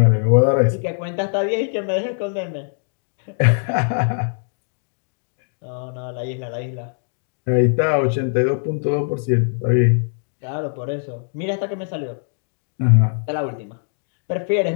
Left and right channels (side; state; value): right; silent; digital silence